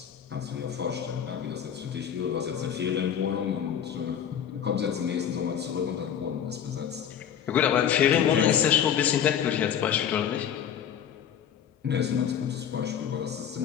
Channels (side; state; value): right; quieter; 8.9 dB